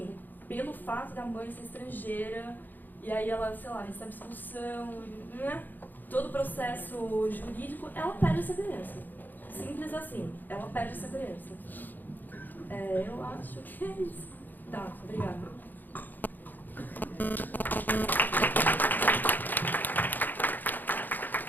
pelo fato da mãe ser estrangeira, e aí ela, sei lá, recebe expulsão, né? Todo o processo jurídico, ela perde essa criança. Simples assim, ela perde essa criança. Eu acho que é isso. Tá, obrigada.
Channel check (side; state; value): right; late; 0.087 ms